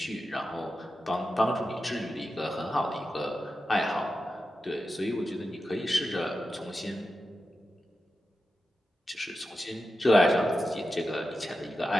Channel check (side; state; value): both; normal; correlation 0.91